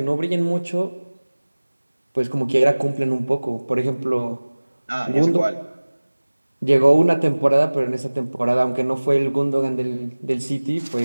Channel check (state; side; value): inverted; both; correlation -1.00